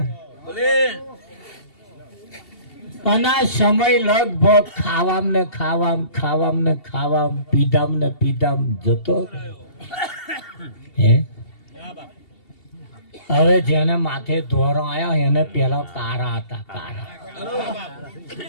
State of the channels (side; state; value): right; late; 2.7 ms